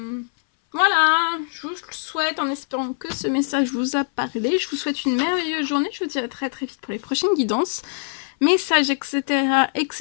Voilà, je vous souhaite, en espérant que ce message vous a parlé, je vous souhaite une merveilleuse journée. Je vous dis à très très vite pour les prochaines guidances, messages, etc.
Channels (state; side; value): silent; right; 62 dB below the other